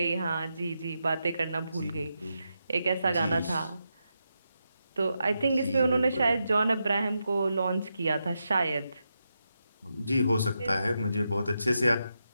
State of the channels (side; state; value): both; inverted; correlation -0.86